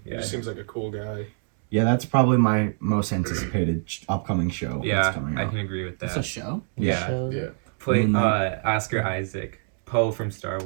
He Yeah. just seems like a cool guy. Yeah, that's probably my most anticipated upcoming show. Yeah, that's coming I out. can agree with It's that. a show. Yeah. Shows Yeah. it? Play Moon Knight. Oscar Isaac. Poe from Star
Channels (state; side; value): silent; left; 55 dB below the other